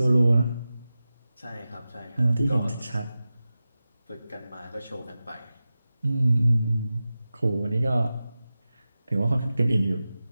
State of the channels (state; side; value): inverted; both; correlation -0.94